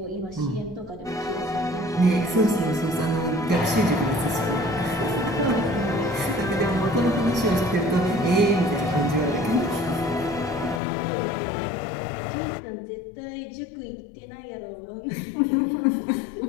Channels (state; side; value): drops out; right; at 10.8 s